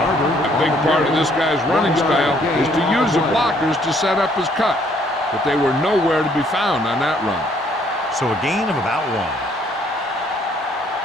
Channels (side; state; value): both; normal; correlation 0.65